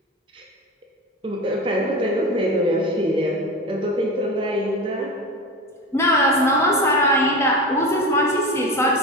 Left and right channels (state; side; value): normal; both; correlation 0.27